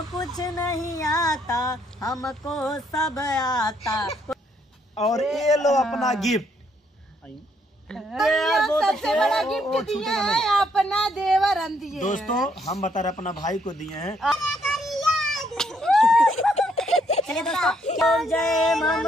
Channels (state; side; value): normal; both; correlation 0.71